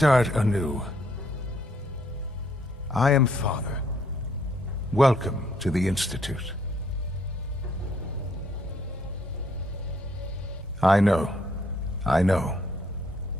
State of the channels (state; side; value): normal; both; correlation 0.69